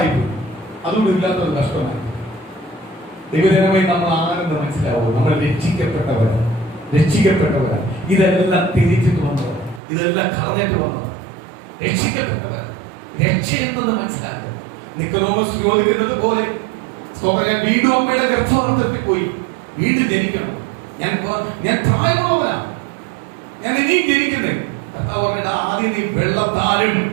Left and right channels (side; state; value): left; drops out; at 9.8 s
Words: പോയി. അതുകൊണ്ട് ഇല്ലാത്തൊരു കഷ്ടമായി. ദൈവജനമായി നമ്മൾ ആരെന്ന് മനസ്സിലാവും. നമ്മൾ രക്ഷിക്കപ്പെട്ടവരാണ്. ഇതെല്ലാം തിരിച്ചിട്ട് വന്നത്, ഇതെല്ലാം കളഞ്ഞിട്ട് വന്നത് രക്ഷിക്കപ്പെട്ടവർ. രക്ഷയെന്നത് മനസ്സിലാക്കുക. നിക്കോദോമസ് ചോദിക്കുന്നത് പോലെ ഞാൻ വീണ്ടും അമ്മയുടെ ഗർഭപാത്രത്തിൽ പോയി വീണ്ടും ജനിക്കണം. ഞാൻ പ്രായമുള്ളവനാണ്, ഞാൻ ഇനിയും ജനിക്കുന്നേ. കർത്താവ് പറഞ്ഞിട്ട് ആദ്യം നീ വെള്ളത്താലും